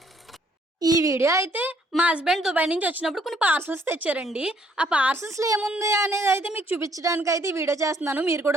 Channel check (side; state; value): both; normal; correlation 0.66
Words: ఈ వీడియో అయితే మా హస్బెండ్ దుబాయ్ నుంచి వచ్చినప్పుడు కొన్ని పార్సల్స్ తెచ్చారండి. ఆ పార్సల్స్లో ఏముంది అనేది అయితే మీకు చూపించడానికి అయితే ఈ వీడియో చేస్తున్నాను, మీరు